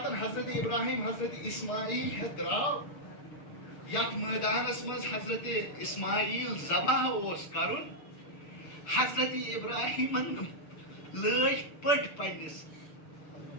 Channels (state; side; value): late; right; 6.7 ms